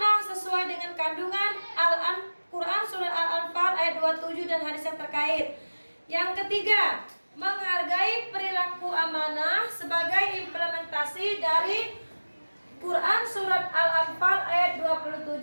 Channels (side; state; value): both; inverted; correlation -1.00